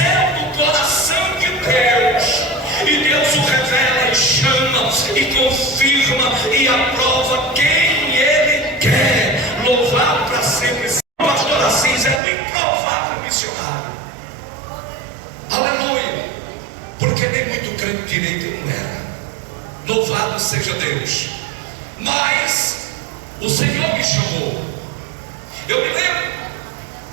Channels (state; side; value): drops out; left; at 12.2 s